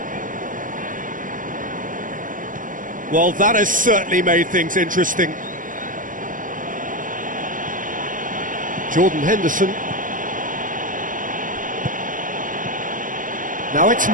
Well, that has certainly made things interesting. Jordan Henderson. Now it's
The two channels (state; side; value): late; left; 0.38 ms